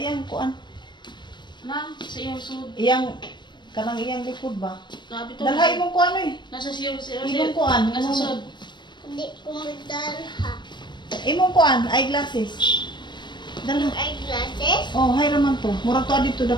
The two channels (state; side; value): late; right; 0.22 ms